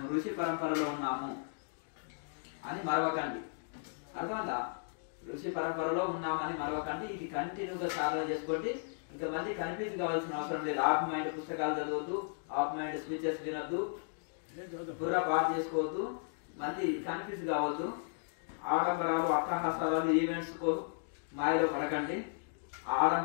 ఋషి పరంపరలో ఉన్నాము అని మరవకండి. అర్థమైందా? ఋషి పరంపరలో ఉన్నామని మరవకండి. ఇది కంటిన్యూగా సాధన చేసుకోండి. ఇంకా మళ్ళీ కన్ఫ్యూజ్ కావాల్సిన అవసరం లేదు. ఆఫ్ మైండ్ పుస్తకాలు చదవద్దు, ఆఫ్ మైండ్ స్పీచెస్ వినొద్దు, పూరా పాటు చేసుకోవద్దు, మళ్ళీ కన్ఫ్యూజ్ కావద్దు. ఆడంబరాలు, అట్టహాసాలు, ఈవెంట్స్ మాయలో పడకండి.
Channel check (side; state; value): right; silent; digital silence